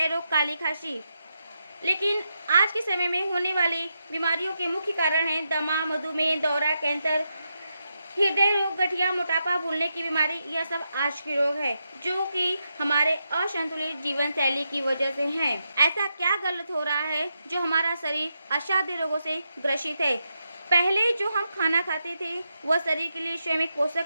रोग, काली खांसी। लेकिन आज के समय में होने वाली बीमारियों के मुख्य कारण हैं दमा, मधुमेह, दौरा, कैंसर, हृदय रोग, गठिया, मोटापा, भूलने की बीमारी। यह सब आज के रोग है, जो कि हमारे असंतुलित जीवन शैली की वजह से हैं। ऐसा क्या गलत हो रहा है जो हमारा शरीर असाध्य रोगों से ग्रसित है? पहले जो हम खाना खाते थे वह शरीर के लिए स्वयं एक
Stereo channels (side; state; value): both; inverted; correlation -0.84